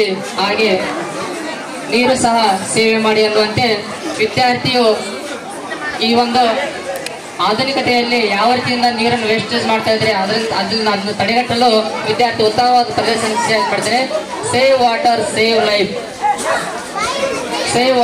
ಹಾಗೆ ನೀರು ಸಹ ಸೇವೆ ಮಾಡಿ ಅನ್ನುವಂತೆ ವಿದ್ಯಾರ್ಥಿಯು ಈ ಒಂದು ಆಧುನಿಕತೆಯಲ್ಲಿ ಯಾವ ರೀತಿಯಿಂದ ನೀರನ್ನು ವೇಸ್ಟೇಜ್ ಮಾಡ್ತಾ ಇದ್ರೆ ಅದನ್ನು ತಡೆಗಟ್ಟಲು ವಿದ್ಯಾರ್ಥಿ ಉತ್ತಮವಾದ ಪ್ರದರ್ಶನ ಮಾಡ್ತಾರೆ. Save water save life, save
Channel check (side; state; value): both; identical; correlation 1.00